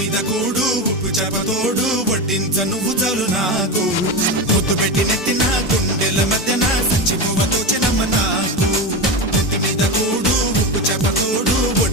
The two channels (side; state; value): both; normal; correlation 0.19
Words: కూడు ఉప్పు చేపతోడు వడ్డించ నువ్వు చాలు నాకు ముద్దు పెట్టి నెత్తిన గుండెల మధ్యన సంచిపోవతో చిన్నమ్మ నాకు ఇంటి మీద కూడు ఉప్పు చేపతోడు